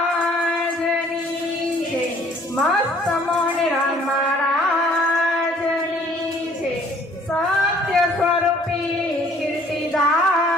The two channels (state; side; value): normal; both; correlation 0.58